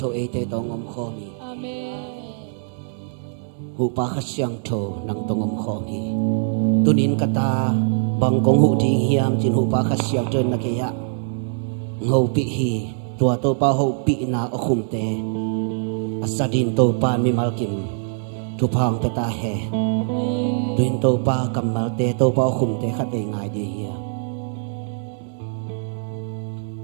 e te tong om kho mi hu pa kha siang tho nang tong om kho mi tunin kata bang kong hu ding hiam chin hu pa kha siang tön na ke ya ngau pi hi tua to pa ho pi na o khum te asadin to pa mi mal kim tu phang te ta he tuin to pa kamal te to pa o khum te kha te ngai di hi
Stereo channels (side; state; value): left; silent; 64 dB below the other